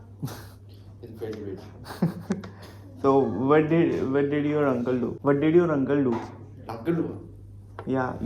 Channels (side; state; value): both; identical; correlation 1.00